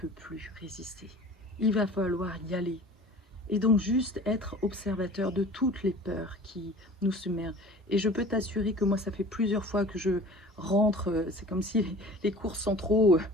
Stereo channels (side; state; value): both; normal; correlation 0.43